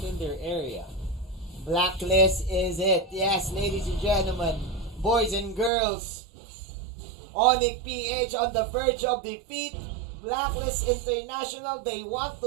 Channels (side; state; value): left; drops out; at 5.7 s